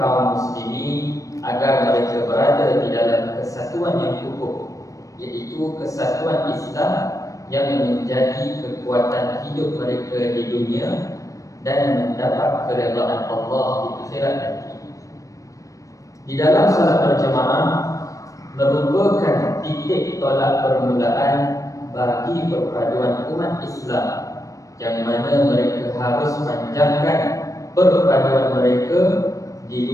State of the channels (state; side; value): late; right; 0.16 ms